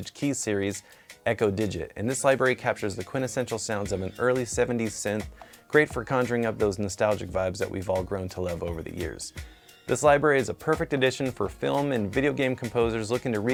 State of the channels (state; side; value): identical; both; correlation 1.00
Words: Keys series, Eko Digit. And this library captures the quintessential sounds of an early 70s synth, great for conjuring up those nostalgic vibes that we've all grown to love over the years. This library is a perfect addition for film and video game composers looking to